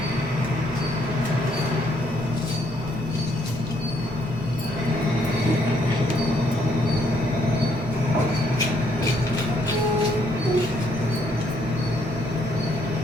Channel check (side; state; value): both; normal; correlation 0.70